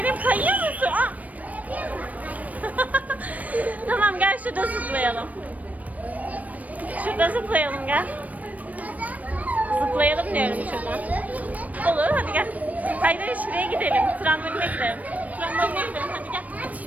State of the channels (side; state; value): left; late; 0.072 ms